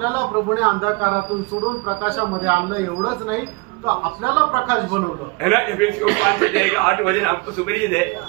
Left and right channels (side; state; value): left; quieter; 27.4 dB